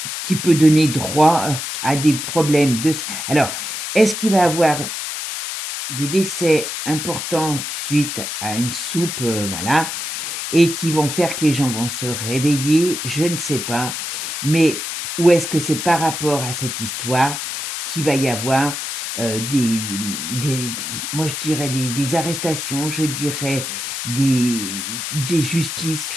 qui peut donner droit à des problèmes de... Alors, est-ce qu'il va avoir des décès importants suite à une soupe, voilà, et qui vont faire que les gens vont se réveiller? Je ne sais pas. Mais ou est-ce que c'est par rapport à cette histoire qu'il va y avoir moi je dirais des arrestations, je dirais des justices,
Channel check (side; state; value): left; noise; hiss, 5 dB below the sound